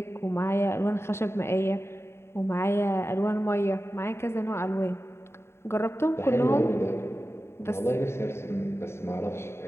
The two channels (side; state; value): right; late; 0.12 ms